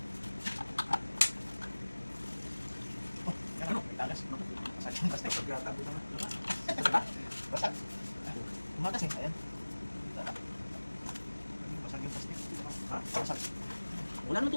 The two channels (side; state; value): both; inverted; correlation -1.00